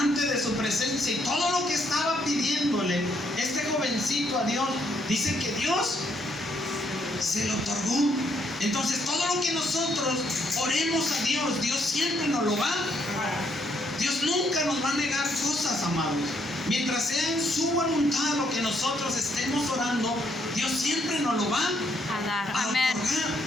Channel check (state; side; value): normal; both; correlation 0.72